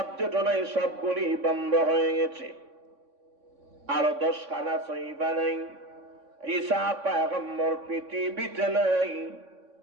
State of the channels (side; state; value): left; late; 3.6 ms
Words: নাই, সবগুলি বন্ধ হয়ে গেছে। আরো 10 খানা সহিফা নাই। ঈসা পয়গম্বর পৃথিবীতে নাই।